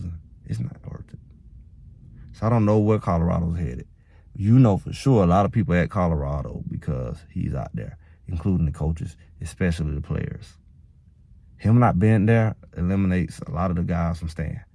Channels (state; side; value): identical; both; correlation 1.00